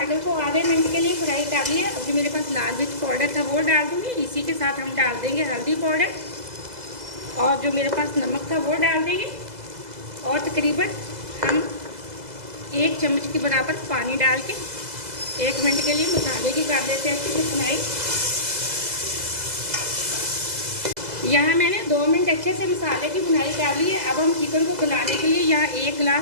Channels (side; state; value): left; late; 2.0 ms